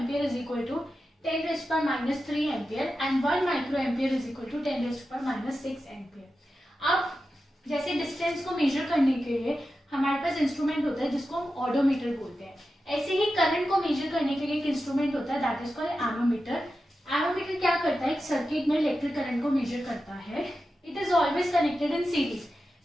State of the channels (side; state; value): both; normal; correlation 0.91